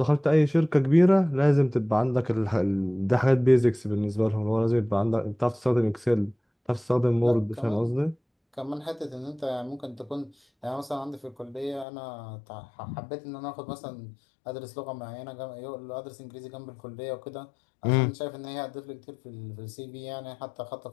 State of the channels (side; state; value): right; drops out; at 11.9 s